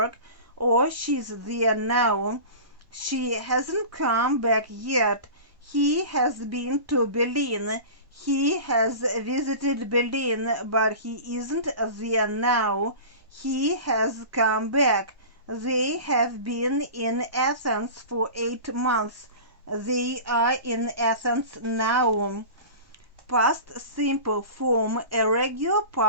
or she's there now. She hasn't come back yet. He has been to Berlin. He has visited Berlin, but he isn't there now. He has come back. They have been in Athens for 8 months. They are in Athens now. Past simple form. A regular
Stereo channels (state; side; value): late; left; 1.1 ms